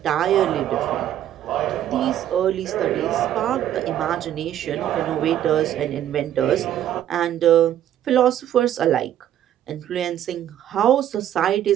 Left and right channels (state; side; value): quieter; left; 11.3 dB